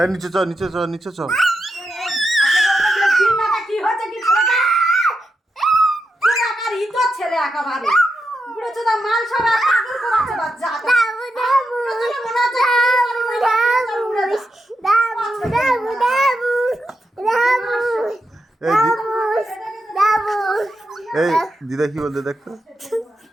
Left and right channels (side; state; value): both; normal; correlation 0.87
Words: নিচে চ নিচে চ নিচে চ কি হচ্ছে কি ছেলেটা? কোন আকার ইতো ছেলে একেবারে বুড়ো চোদা মাল সব পাগল করাচ্ছে বাচ্চা দাবু দাবু দাবু দাবু দাবু এই দিদা কি বলতে দেখতো